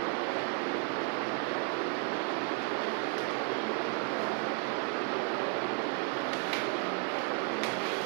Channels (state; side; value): quieter; left; 34.6 dB